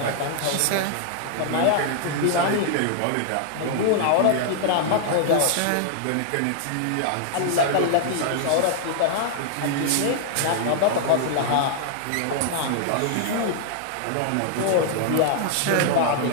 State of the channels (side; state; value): both; different; correlation -0.01